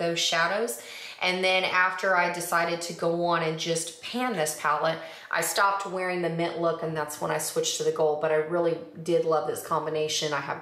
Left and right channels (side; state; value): both; identical; correlation 1.00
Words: shadows. And then after I decided to go on and just pan this palette, I stopped wearing the mint look, and that's when I switched to the gold. But I really did love this combination. I